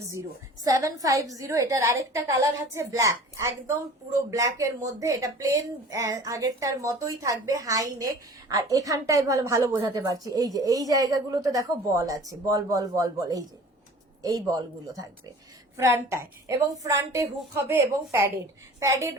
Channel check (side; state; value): both; normal; correlation 0.44